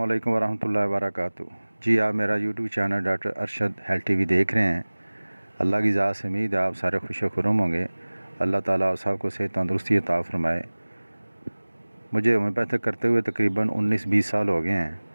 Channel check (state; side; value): inverted; both; correlation -1.00